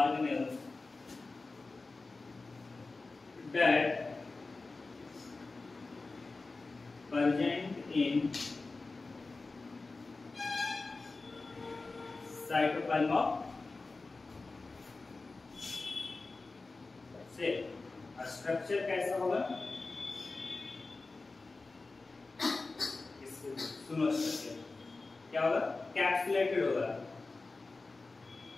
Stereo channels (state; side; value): quieter; right; 3.6 dB